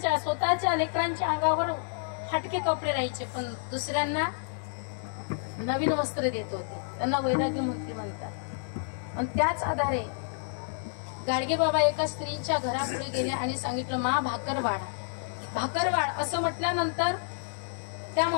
लेकरांच्या अंगावर फाटके कपडे राहायचे, पण दुसऱ्यांना नवीन वस्त्र देत होते. त्यांना वैराग्यमूर्ती म्हणतात. आणि त्याच आधारे गाडगे बाबा एका स्त्रीच्या घरापुढे गेले आणि सांगितलं, मा भाकर वाढ असं म्हटल्यानंतर त्या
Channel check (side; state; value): right; silent; digital silence